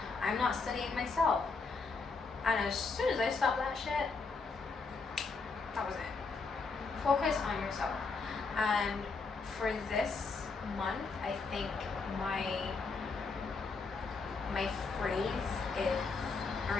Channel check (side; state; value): right; quieter; 4.4 dB